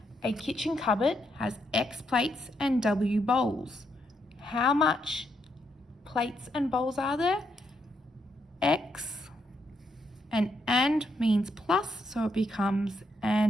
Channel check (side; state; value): both; normal; correlation 0.78